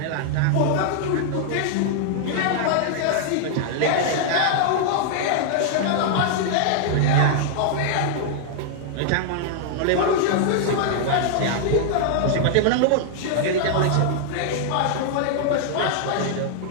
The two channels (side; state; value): both; different; correlation -0.01